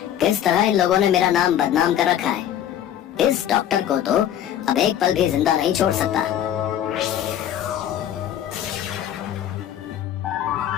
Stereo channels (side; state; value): right; quieter; 10.7 dB